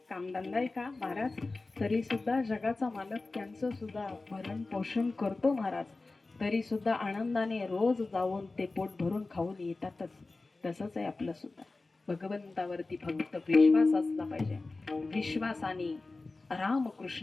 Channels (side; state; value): right; quieter; 3.4 dB